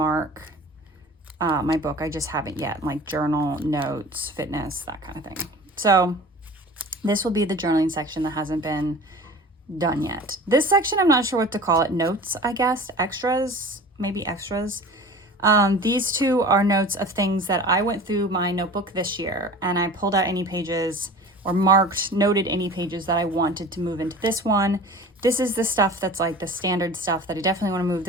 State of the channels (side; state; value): both; normal; correlation 0.40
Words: my book. I just haven't yet, like journal, notes, fitness, that kind of thing. So this will be the journaling section that hasn't been done yet. This section, I'm not sure what to call it. Notes, I guess. Extras, maybe extras. These two are notes of things that I went through my notebook this year, and I pulled out any pages or noted any pages that I wanted to move into this one. This is the stuff that's like the standard stuff that I definitely want to move.